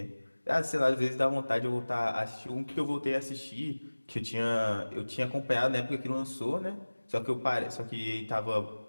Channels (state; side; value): inverted; both; correlation -1.00